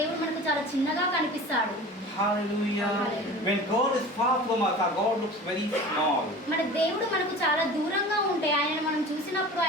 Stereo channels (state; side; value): normal; both; correlation 0.38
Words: మనకు చాలా చిన్నగా కనిపిస్తాడు. Hallelujah. Hallelujah. When God is far from us, our God looks very small. మన దేవుడు మనకు చాలా దూరంగా ఉంటే ఆయన మనం చూసినప్పుడు